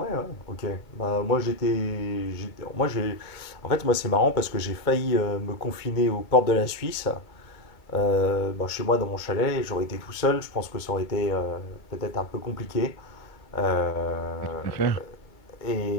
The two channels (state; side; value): late; right; 2.2 ms